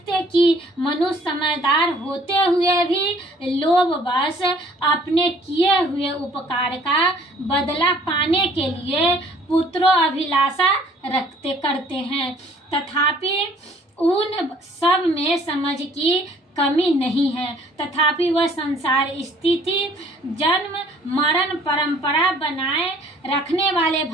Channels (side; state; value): both; normal; correlation 0.56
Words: कि मनुष्य समझदार होते हुए भी लोभवश अपने किए हुए उपकार का बदला पाने के लिए पुत्रों अभिलाषा करते हैं, तथापि उन सब में समझ की कमी नहीं है, तथापि वह संसार स्थिति जन्म मरण परंपरा बनाए रखने वाले